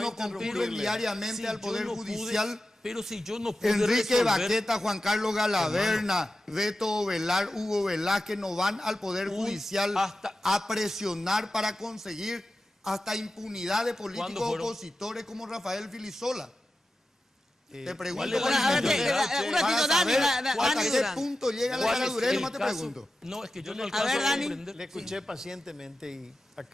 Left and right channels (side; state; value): both; normal; correlation 0.92